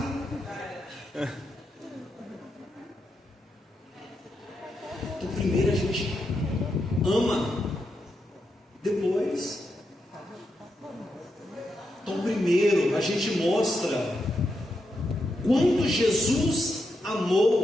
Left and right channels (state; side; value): normal; both; correlation 0.84